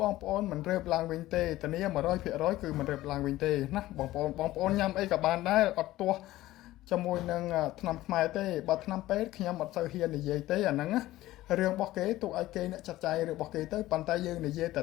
បងប្អូនមិនរើបឡើងវិញទេធានា 100% គឺមិនរើបឡើងវិញទេណាបងប្អូនញ៉ាំអីក៏បានដែរអត់ទាស់ជាមួយនឹងថ្នាំខ្មែរទេបើថ្នាំពេទ្យខ្ញុំអត់សូវហ៊ាននិយាយទេអាហ្នឹងណារឿងរបស់គេទុកឲ្យគេអ្នកចាត់ចែងរបស់គេទៅប៉ុន្តែយើងនិយាយតែ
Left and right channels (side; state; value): right; quieter; 16.2 dB